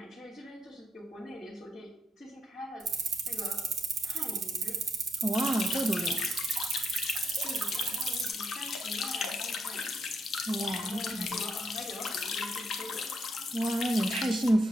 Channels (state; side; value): normal; both; correlation 0.79